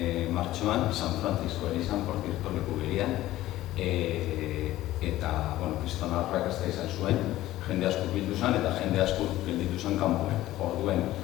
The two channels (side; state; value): right; quieter; 15.3 dB